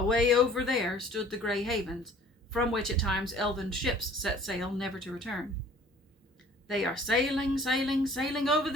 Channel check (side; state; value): both; normal; correlation 0.51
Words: over there stood the Grey Havens, from which at times elven ships set sail never to return. "They are sailing, sailing, sailing over